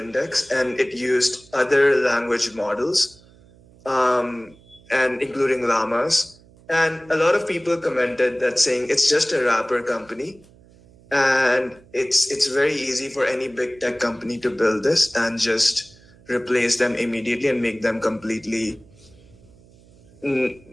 and it used other language models, and including llamas. And a lot of people commented that saying it's just a wrapper company, and it's very easy for any big tech company to build this and just replace them immediately and make them completely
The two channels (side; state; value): right; noise; hum, 27 dB below the sound